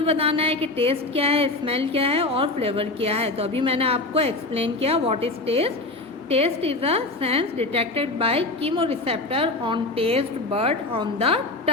बताना है कि टेस्ट क्या है, स्मेल क्या है और फ्लेवर क्या है। तो अभी मैंने आपको एक्सप्लेन किया what is taste. Taste is a sense detected by chemoreceptor on taste bud on the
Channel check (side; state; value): right; quieter; 3.0 dB